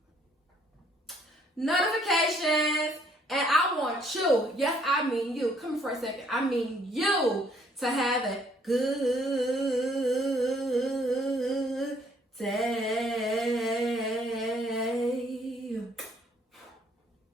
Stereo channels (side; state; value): both; normal; correlation 0.64